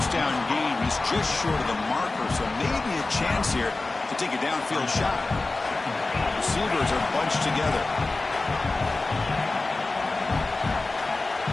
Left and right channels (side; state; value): right; quieter; 3.3 dB